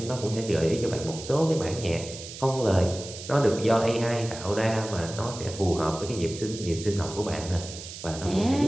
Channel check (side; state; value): right; noise; hiss, 12 dB below the sound